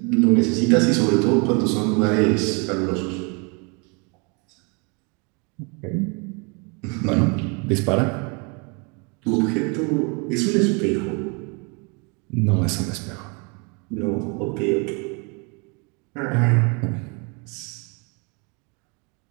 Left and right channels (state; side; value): quieter; left; 32.6 dB